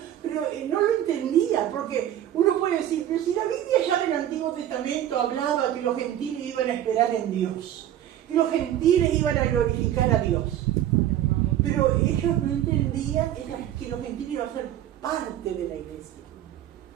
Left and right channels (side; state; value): left; quieter; 11.7 dB